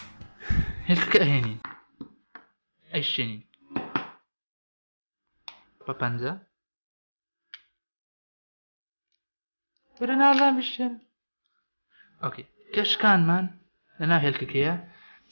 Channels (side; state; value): both; inverted; correlation -1.00